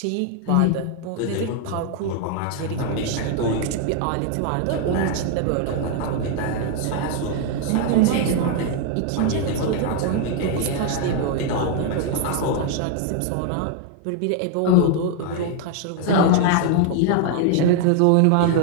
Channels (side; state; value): both; different; correlation 0.00